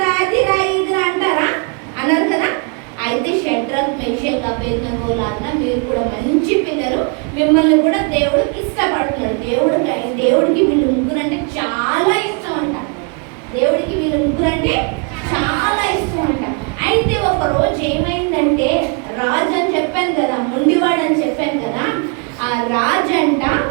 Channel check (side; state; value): left; quieter; 35.8 dB